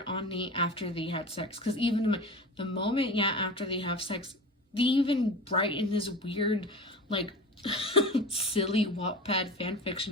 on Nate after they had sex. Because even the moment, after they have sex, they even write in this weird, like, silly Wattpad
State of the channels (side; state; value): both; normal; correlation 0.31